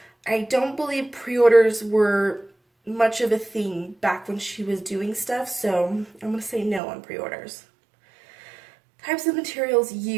I don't believe pre-orders were much of a thing back when she was doing stuff, so I'm gonna say no on pre-orders. Types of materials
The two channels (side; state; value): left; drops out; at 6.8 s